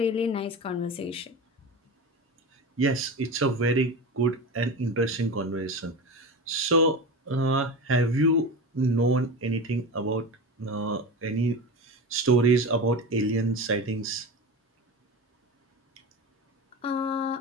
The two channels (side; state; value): both; normal; correlation 0.26